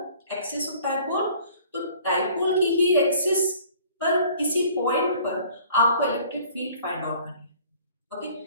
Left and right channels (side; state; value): both; inverted; correlation -0.53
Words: एक्सिस ऑफ डाइपोल, तो डाइपोल की ही एक्सिस पर किसी पॉइंट पर आपको इलेक्ट्रिक फील्ड फाइंड आउट करनी है।